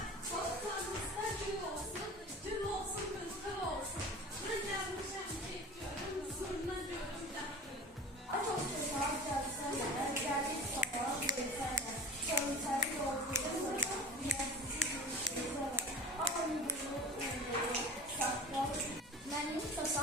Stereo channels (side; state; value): both; normal; correlation 0.38